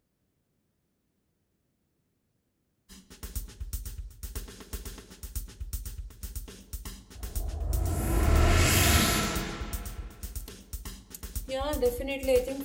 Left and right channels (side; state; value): both; identical; correlation 1.00